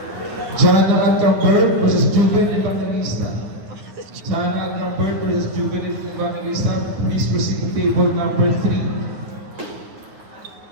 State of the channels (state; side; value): late; left; 9.5 ms